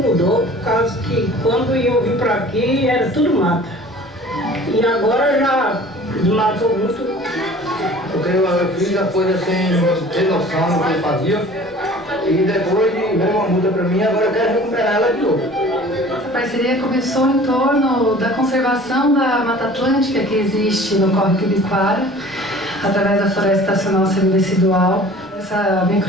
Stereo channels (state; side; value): normal; both; correlation 0.46